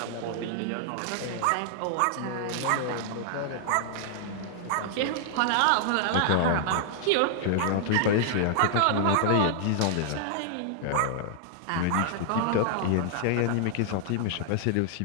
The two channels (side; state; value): both; different; correlation -0.01